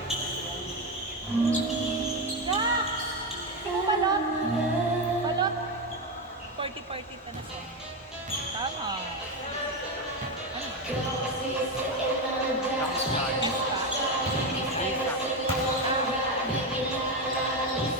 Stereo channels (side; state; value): both; normal; correlation 0.12